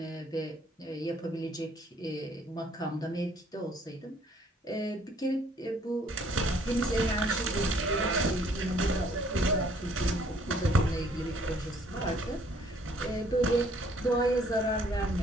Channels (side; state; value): both; normal; correlation 0.62